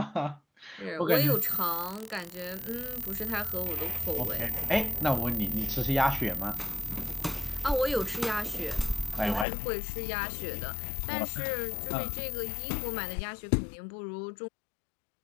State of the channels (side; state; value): right; drops out; at 9.5 s